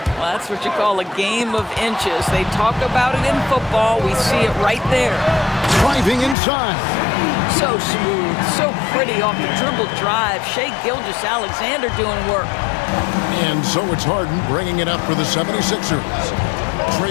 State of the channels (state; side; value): drops out; right; at 6.4 s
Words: Well, that's what you call a game of inches. They talk about it in football. We see it right there. Driving inside. So smooth, so pretty off the dribble drive. Shai Gilgeous-Alexander doing work. And so it's Harden bringing it up for the 76ers.